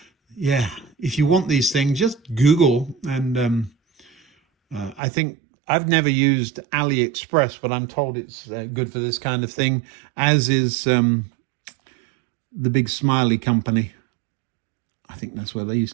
Yeah, if you want these things, just Google. And I think I've never used AliExpress, but I'm told it's good for this kind of thing, as is the big Smiley company. I think that's where these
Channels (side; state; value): left; drops out; at 5.0 s